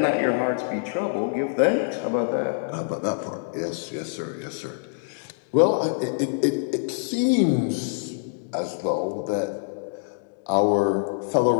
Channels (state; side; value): silent; right; digital silence